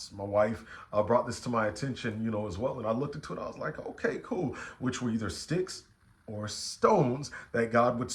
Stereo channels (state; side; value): identical; both; correlation 1.00